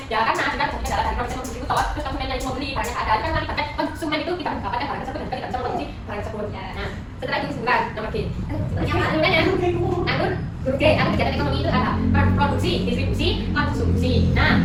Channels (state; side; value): identical; both; correlation 1.00